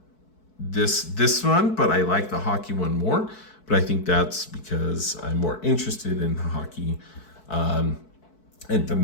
this one, but I like the hockey one more. But I think that's because I'm more interested in hockey. And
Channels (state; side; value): late; right; 4.6 ms